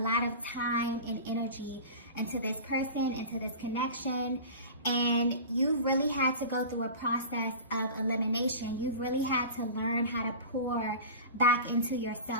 of time and energy into this person, into this connection, and you really had to go through a process of elimination. You've really had to learn how to pour back into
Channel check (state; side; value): inverted; both; correlation -0.33